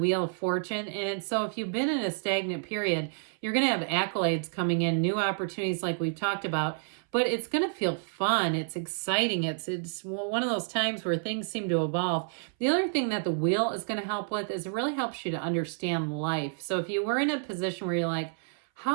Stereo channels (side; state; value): left; silent; 58 dB below the other